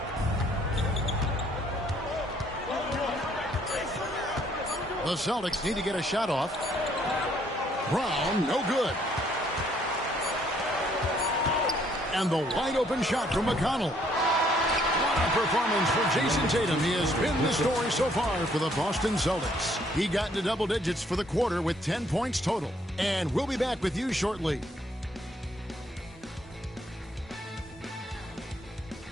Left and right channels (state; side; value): normal; both; correlation 0.66